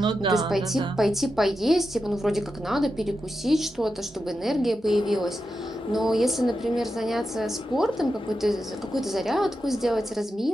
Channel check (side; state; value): both; normal; correlation 0.88